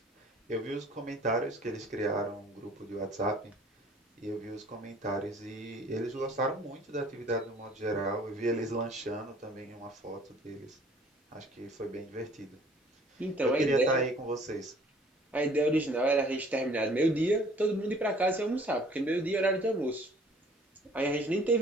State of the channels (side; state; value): both; normal; correlation 0.54